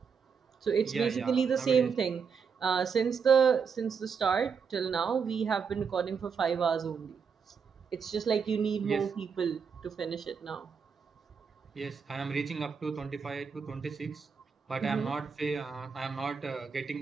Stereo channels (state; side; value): quieter; left; 6.1 dB